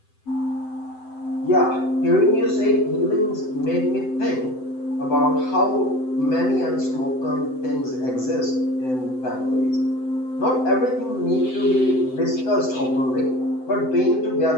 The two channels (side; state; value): right; late; 7.8 ms